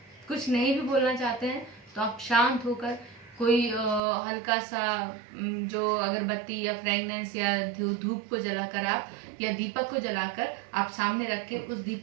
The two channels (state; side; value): drops out; left; at 4.0 s